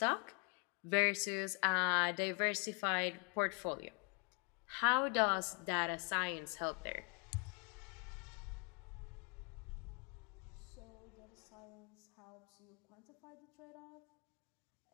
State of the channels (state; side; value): quieter; right; 34.7 dB